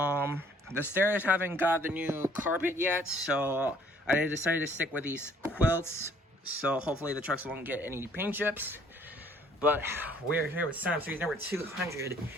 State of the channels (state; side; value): normal; both; correlation 0.60